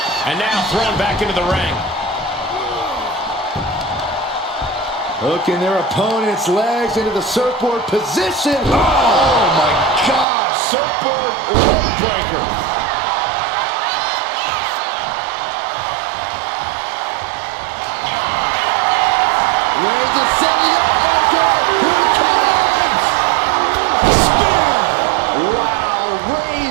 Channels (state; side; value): drops out; left; at 10.2 s